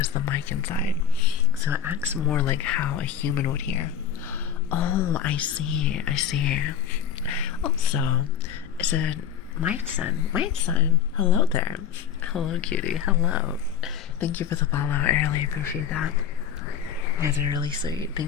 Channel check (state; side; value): quieter; right; 8.5 dB